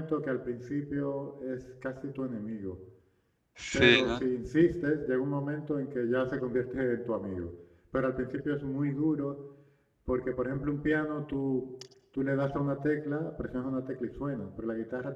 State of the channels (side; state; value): both; identical; correlation 1.00